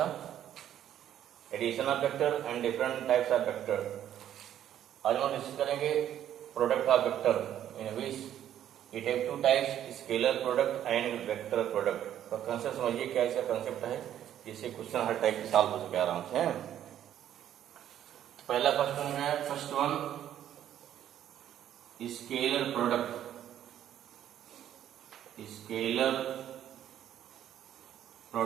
addition of vector and different types of vector. आज हम डिस्कस करेंगे product of vector in which it have two types, scalar product and vector product. तो कंसेप्ट समझिए क्या इसका कंसेप्ट है, जिससे क्वेश्चन हर टाइप के सॉल्व हो सके आराम से। तो पहला क्वेश्चन है, first one scalar product. Scalar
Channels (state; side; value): quieter; left; 10.9 dB